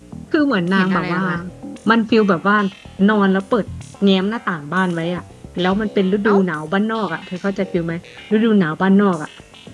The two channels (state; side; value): identical; both; correlation 1.00